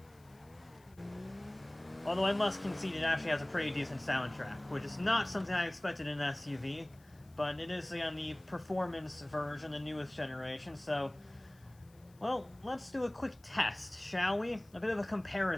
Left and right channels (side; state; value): left; noise; hiss, 30 dB below the sound